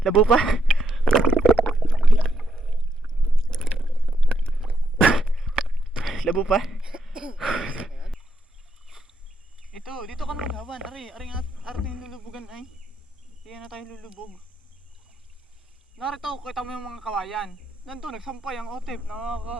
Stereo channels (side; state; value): both; normal; correlation 0.78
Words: Labo pa. Labo pa. Ito, dito ka na maghawan. Aring ating lulubugan ay. Hindi na tayo lulubog. Narito, kita mo yung mga kawayan. Nandun, nagsampay ang otep.